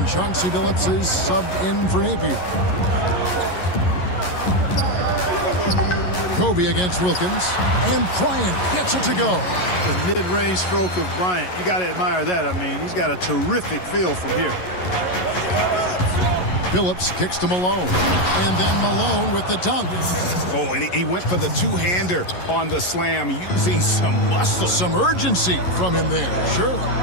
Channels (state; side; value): late; right; 11 ms